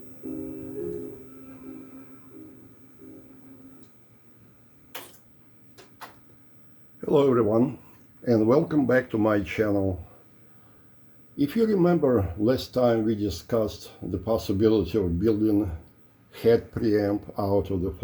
everyone, and welcome back to my channel. If you remember, last time we discussed the possibility of building head preamp out of the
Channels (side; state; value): both; identical; correlation 1.00